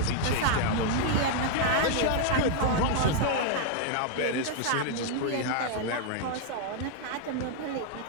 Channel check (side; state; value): both; different; correlation 0.00